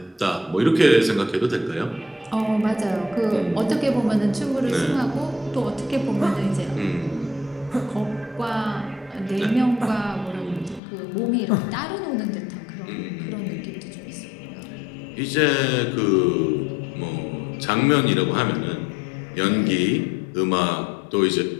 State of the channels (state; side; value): drops out; right; at 10.8 s